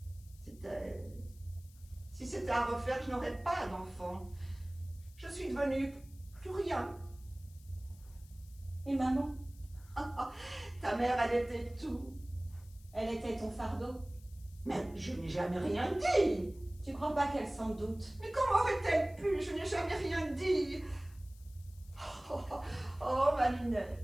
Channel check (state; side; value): noise; left; hiss, 26 dB below the sound